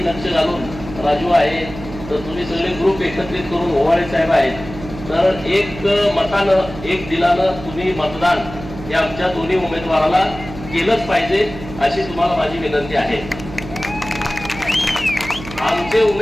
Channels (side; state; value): right; noise; hum, 13 dB below the sound